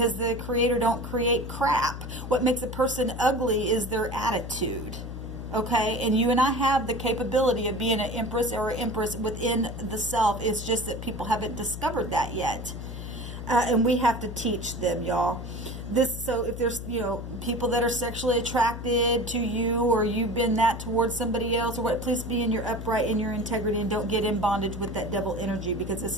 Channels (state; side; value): noise; left; hum, 8 dB below the sound